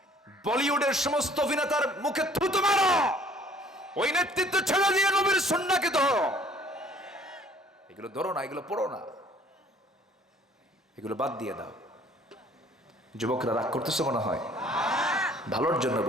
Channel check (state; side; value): normal; both; correlation 0.57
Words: বলিউডের সমস্ত অভিনেতার মুখে থুতু মারো, ওই নেতৃত্ব ছেড়ে দিয়ে নবীর সুন্নাহকে ধরো। এগুলো ধরো না, এগুলো পড়ো না, এগুলো বাদ দিয়ে দাও। যুবকরা রাগ করতেছে মনে হয়? ভালোর জন্য